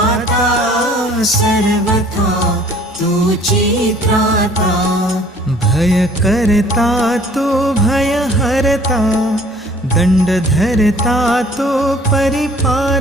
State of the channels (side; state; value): both; normal; correlation 0.54